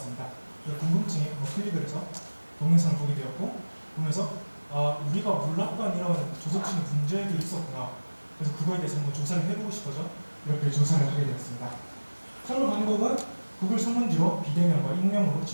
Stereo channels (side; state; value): both; inverted; correlation -1.00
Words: 궁금증에 클릭을 해서 동영상을 보게 되었고, 보면서 우리가 몰랐던 이런 조석진의 문제들이 있었구나. 그래서 그거에 대해서 한번 조사를 해보고 싶어서 이렇게 조사를 하게 되었습니다. 선거 방법은 구글 설문지로 비대면과 익명으로